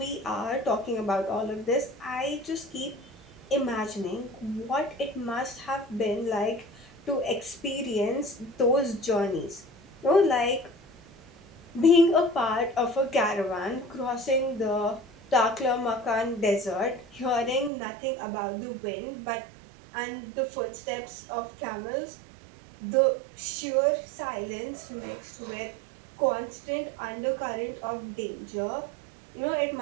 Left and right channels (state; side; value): drops out; left; at 17.7 s